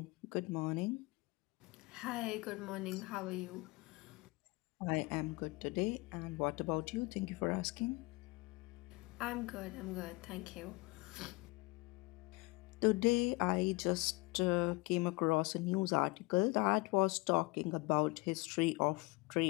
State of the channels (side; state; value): right; quieter; 24.7 dB